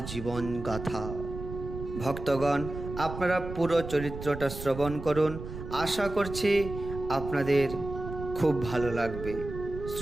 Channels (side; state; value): right; noise; rumble, 9 dB below the sound